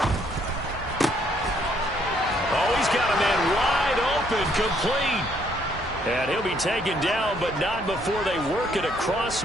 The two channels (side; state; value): both; normal; correlation 0.68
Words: Oh, he's got a man wide open, complete. And he'll be taken down, but not before they work it across